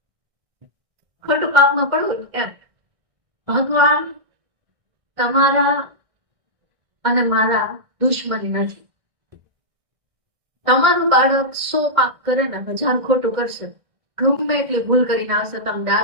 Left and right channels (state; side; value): late; left; 1.6 ms